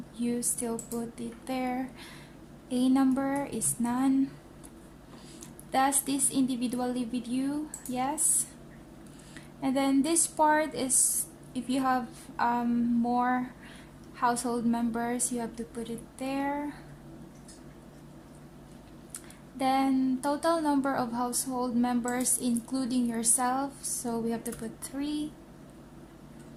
you still put it there. A number is none. Does this individual live with you? Yes. And then this part is if you have more household members, you have to put it there. Then total number of household members including yourself, so we have to put 3.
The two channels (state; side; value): identical; both; correlation 1.00